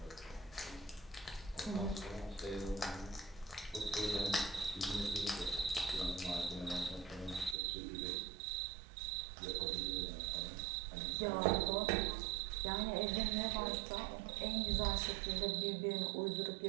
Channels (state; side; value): drops out; left; at 7.6 s